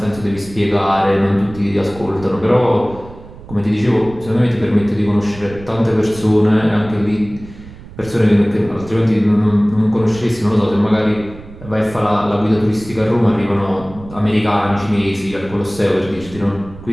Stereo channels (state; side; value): noise; right; rumble, 17 dB below the sound